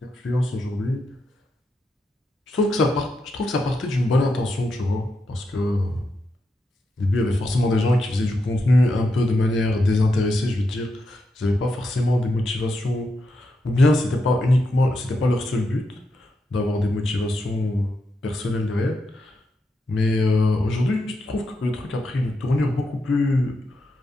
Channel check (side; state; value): both; normal; correlation 0.84